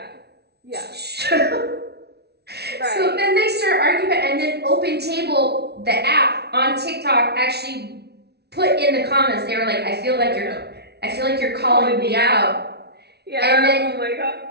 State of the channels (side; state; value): left; late; 0.48 ms